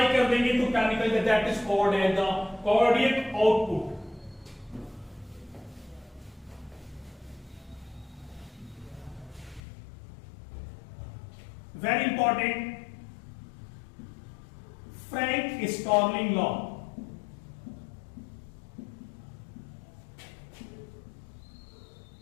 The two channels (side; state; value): right; drops out; at 9.6 s